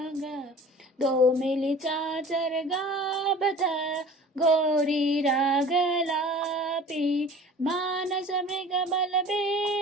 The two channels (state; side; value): normal; both; correlation 0.43